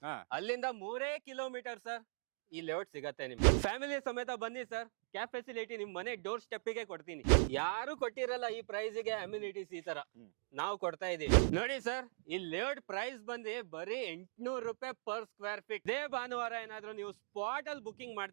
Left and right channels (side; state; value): left; silent; digital silence